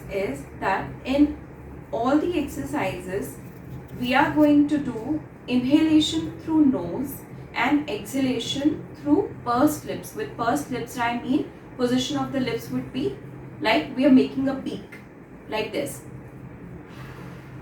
is that in all the exercises we are going to do inhalation through nose and exhalation through pursed lips. With pursed lips I mean position of the lips would be like we are making a beak like this.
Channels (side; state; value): both; identical; correlation 1.00